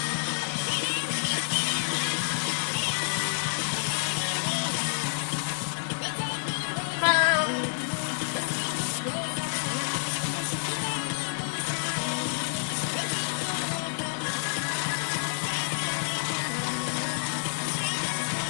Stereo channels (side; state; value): right; silent; 56 dB below the other